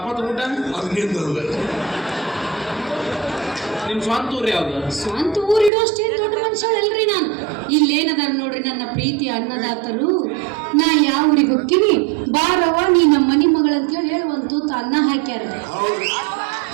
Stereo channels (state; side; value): drops out; left; at 5.7 s